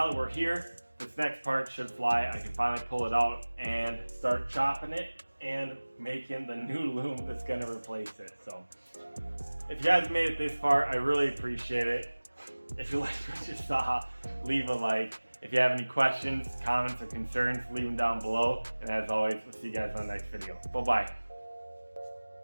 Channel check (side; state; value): both; inverted; correlation -1.00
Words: that we're here, this next part should fly. I can finally pull it out and start chopping it and making the new loom that's gonna replace it. So if you guys made it this far, I really appreciate it. If you liked what you saw, leave a like. If you have any questions, comments, or concerns, leave them down below. And as always, we'll see you guys on the next video. Bye-bye.